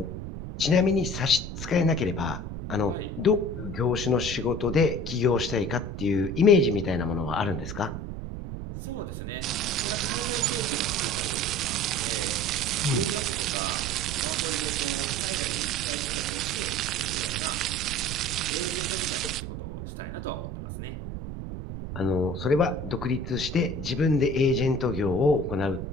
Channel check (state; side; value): noise; right; rumble, 7 dB below the sound